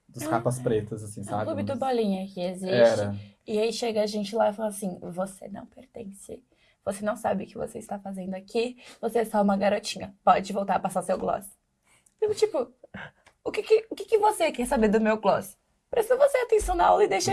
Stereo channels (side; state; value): both; identical; correlation 1.00